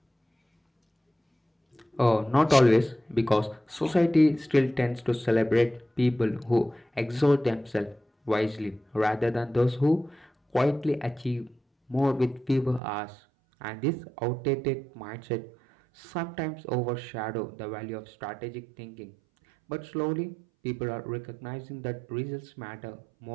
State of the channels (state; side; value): drops out; left; at 12.8 s